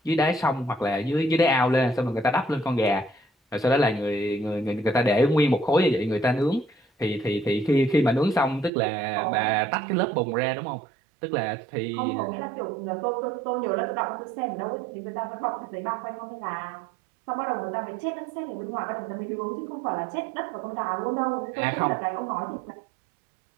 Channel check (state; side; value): drops out; left; at 8.7 s